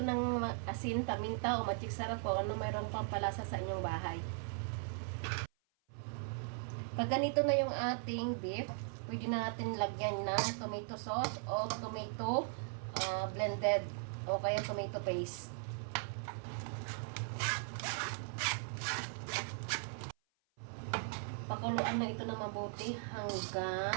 asin, paminta o magic sarap o ano mayroon pang palasa sa inyong bahay. Pag ganito na yung ating beef, pwede na natin lagyan ng tomato sauce o tomato blended o kaya tomato paste. Pakuluan na ito na mabuti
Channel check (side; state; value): left; silent; 52 dB below the other